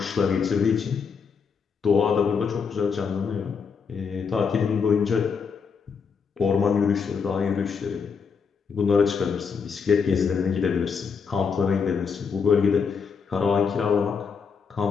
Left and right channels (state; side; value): quieter; right; 5.9 dB